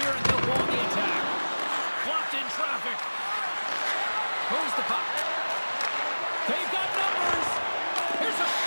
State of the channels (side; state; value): both; inverted; correlation -1.00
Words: and they'll go on the attack. Blocked in traffic. Moves the puck. They've got numbers. Here's a